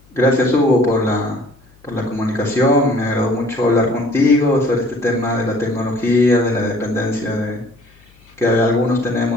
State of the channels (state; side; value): noise; left; hum, 30 dB below the sound